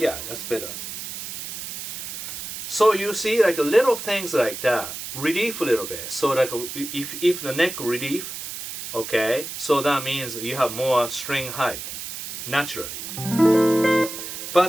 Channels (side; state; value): right; noise; hiss, 8 dB below the sound